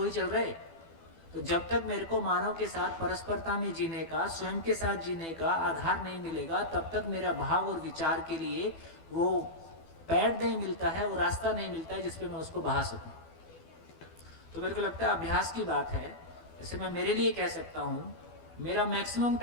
चल रहे। तो जब तक मेरे को मानव के साथ परस्परता में जीने का, स्वयं के साथ जीने का आधार नहीं मिलेगा, तब तक मेरा भाव और विचार के लिए वो पैड नहीं मिलता है, वो रास्ता नहीं मिलता है जिसपे मैं उसको बहा सकूं। तो मेरे को लगता है अभ्यास की बात है। जैसे मैं मेरे लिए कह सकता हूँ, मेरा मैक्सिमम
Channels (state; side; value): late; right; 12 ms